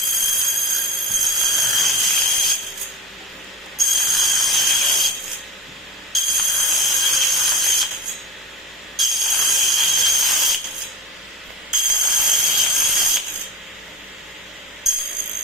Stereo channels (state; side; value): normal; both; correlation 0.31